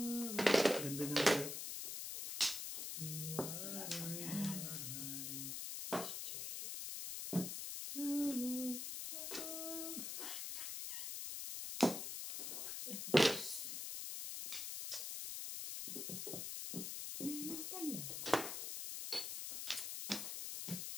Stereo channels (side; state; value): left; noise; hiss, 4 dB below the sound